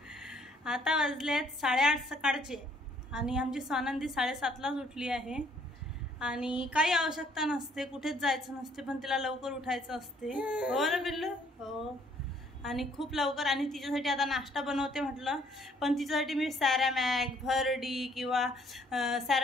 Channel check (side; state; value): both; normal; correlation 0.63